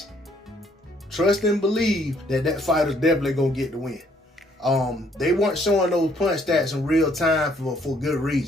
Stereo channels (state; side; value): normal; both; correlation 0.65